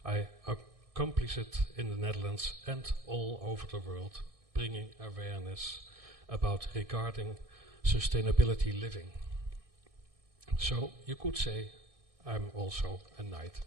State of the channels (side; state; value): left; late; 1.6 ms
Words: I accomplished in the Netherlands and all over the world, bringing awareness about regarding sustainability living. So you could say I'm also a knight